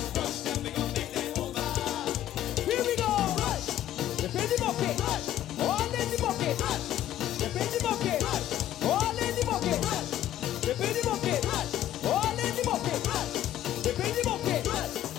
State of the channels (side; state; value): right; quieter; 12.5 dB